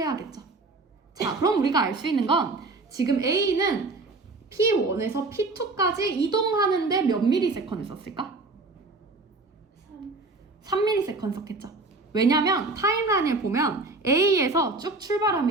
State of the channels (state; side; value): quieter; left; 3.4 dB